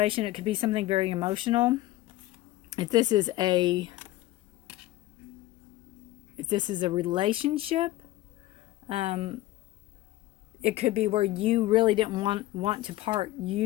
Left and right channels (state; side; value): quieter; right; 16.5 dB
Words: It could be something very emotional. If this is a relationship, it could be where you really didn't want to part.